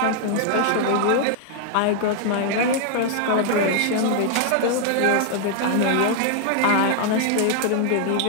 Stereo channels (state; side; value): different; both; correlation 0.00